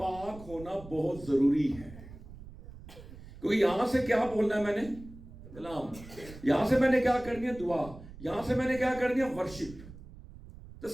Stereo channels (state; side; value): noise; right; rumble, 16 dB below the sound